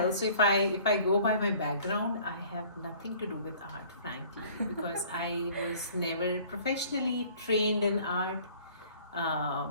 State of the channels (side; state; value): both; inverted; correlation -0.52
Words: so if I go by my background, I have nothing to do with art, frankly, because I was never professionally trained in art. I